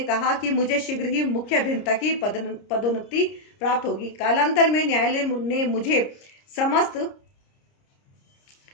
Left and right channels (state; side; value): late; right; 30 ms